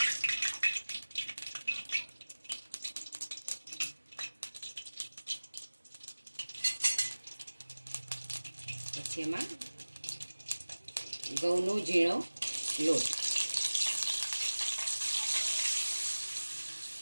પછી એમાં ઘઉંનો ઝીણો લોટ,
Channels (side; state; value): both; inverted; correlation -1.00